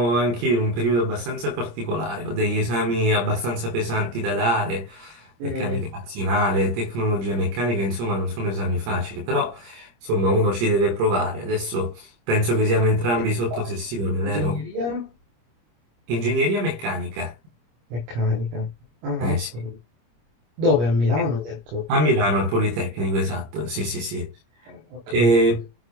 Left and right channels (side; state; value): left; late; 26 ms